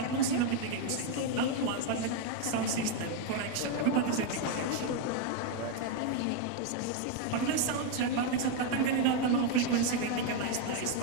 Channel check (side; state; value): both; different; correlation 0.01